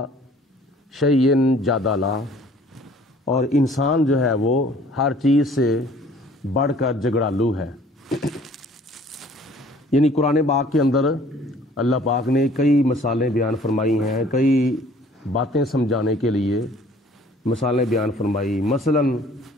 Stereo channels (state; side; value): normal; both; correlation 0.54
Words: شَيْءٍ جَدَلًا، اور انسان جو ہے وہ ہر چیز سے بڑھ کر جھگڑالو ہے۔ یعنی قرآن پاک کے اندر اللہ پاک نے کئی مثالیں بیان فرمائی ہیں، کئی باتیں سمجھانے کے لیے مثالیں بیان فرمائی۔ مثلا